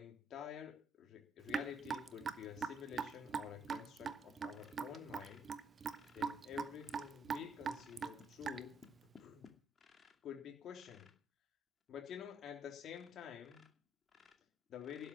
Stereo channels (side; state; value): both; normal; correlation 0.71